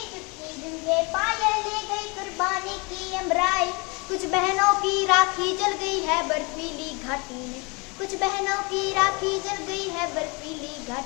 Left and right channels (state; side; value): quieter; right; 29.2 dB